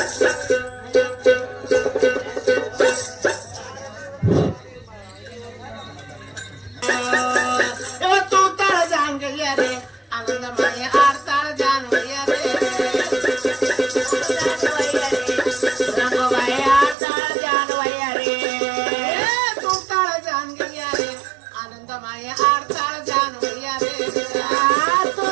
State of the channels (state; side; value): drops out; left; at 16.9 s